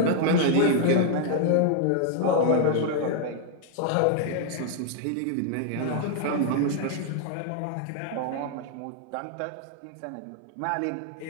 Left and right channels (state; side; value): different; both; correlation 0.00